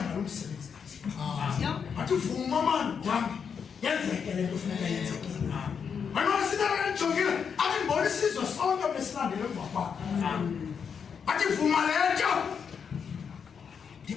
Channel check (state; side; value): quieter; right; 6.7 dB